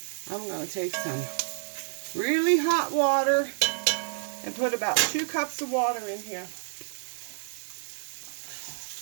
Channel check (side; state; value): left; silent; 59 dB below the other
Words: I'm going to take some really hot water and put about 2 cups of water in here.